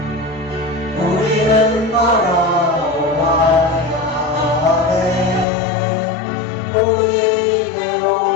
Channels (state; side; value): drops out; right; at 5.5 s